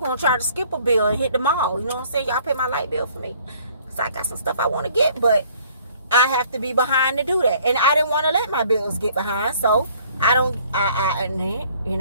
going to try to skip a bill and hit the mall. You know what I'm saying? Y'all pay my light bill for me. I got some stuff I want to get, but I have to be behind to do that, and I didn't want to let my bills get behind, so I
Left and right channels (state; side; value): inverted; both; correlation -0.58